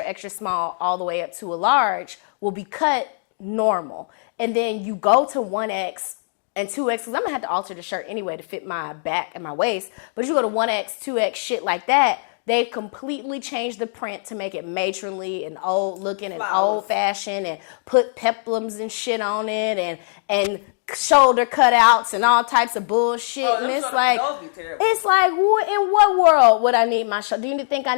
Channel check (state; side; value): silent; right; digital silence